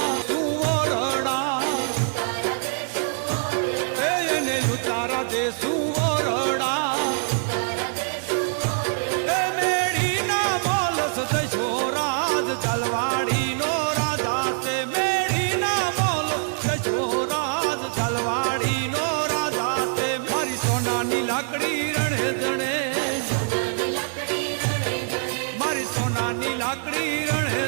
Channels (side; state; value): left; silent; 62 dB below the other